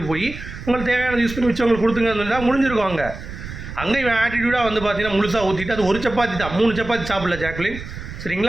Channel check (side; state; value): right; noise; rumble, 11 dB below the sound